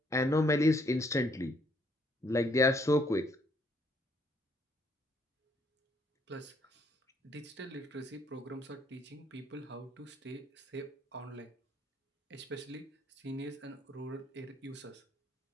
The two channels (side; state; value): both; normal; correlation 0.68